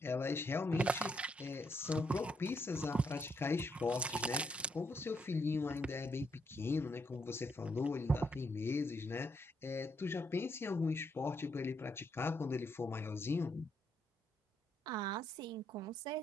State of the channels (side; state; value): both; normal; correlation 0.76